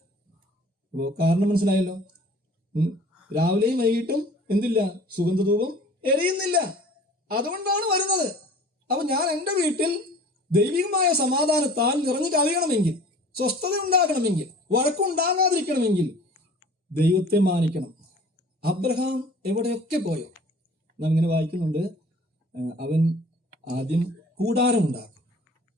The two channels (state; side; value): normal; both; correlation 0.47